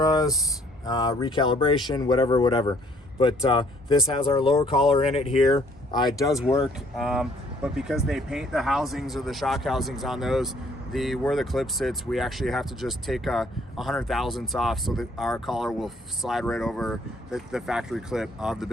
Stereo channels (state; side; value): normal; both; correlation 0.62